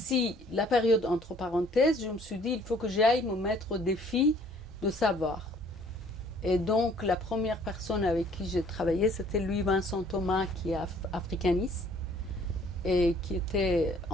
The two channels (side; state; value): both; normal; correlation 0.58